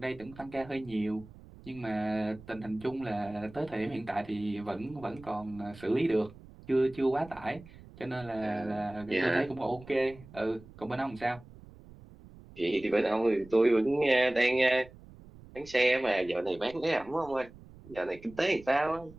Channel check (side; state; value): right; noise; rumble, 20 dB below the sound